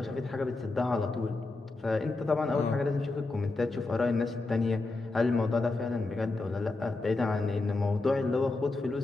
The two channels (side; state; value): right; quieter; 3.3 dB